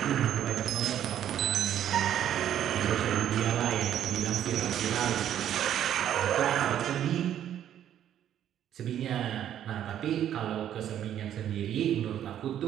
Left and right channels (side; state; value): left; quieter; 10.6 dB